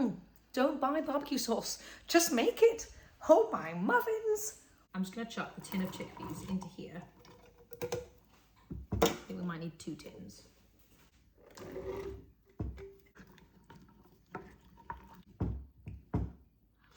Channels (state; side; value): identical; both; correlation 1.00